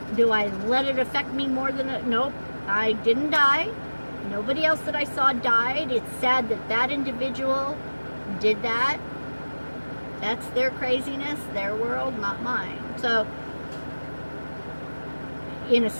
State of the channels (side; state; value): both; inverted; correlation -1.00